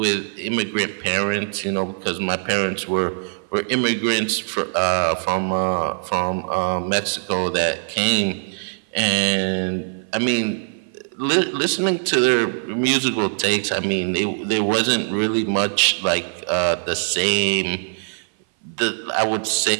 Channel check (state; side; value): silent; left; 59 dB below the other